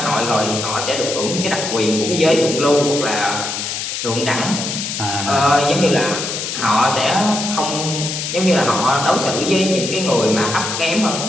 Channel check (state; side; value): noise; left; hiss, 4 dB below the sound